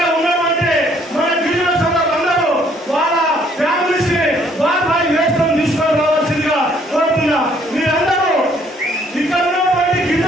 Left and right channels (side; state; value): both; normal; correlation 0.64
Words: ఉన్నటువంటి మన గిరిజన సోదరులందరూ వాళ్ళ ఫ్యామిలీస్ ని వారి వేసుకొని తీసుకొని రావాల్సిందిగా కోరుతున్నా. మీరందరూ ఇక్కడ ఉన్నటువంటి